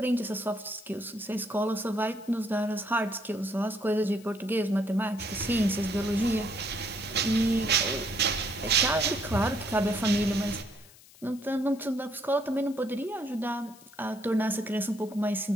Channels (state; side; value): noise; left; hiss, 23 dB below the sound